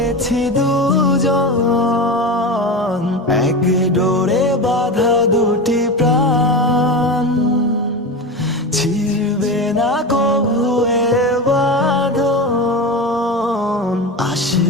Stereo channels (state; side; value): normal; both; correlation 0.23